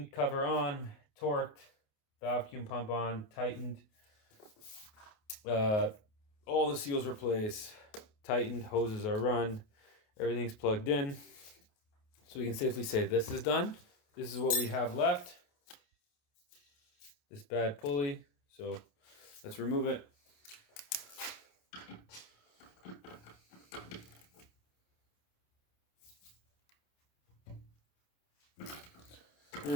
cover on. Torqued. Vacuum pump on. Tightened. All the seals replaced. Tightened. Hoses are run. Everything's plugged in. So we can safely say this is done. This is what we have left. This bad pulley. So let's remove it.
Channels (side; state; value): right; late; 28 ms